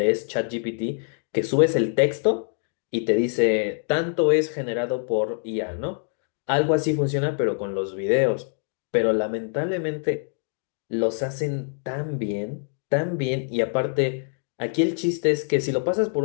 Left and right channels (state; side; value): silent; right; 62 dB below the other